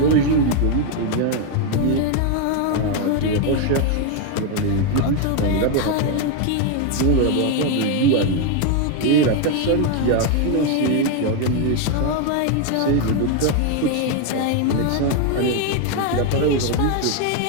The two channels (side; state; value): both; different; correlation 0.01